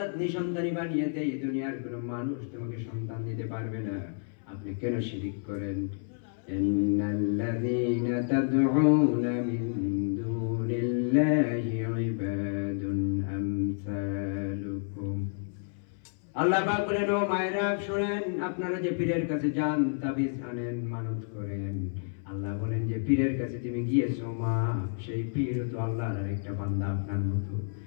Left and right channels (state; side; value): silent; right; 58 dB below the other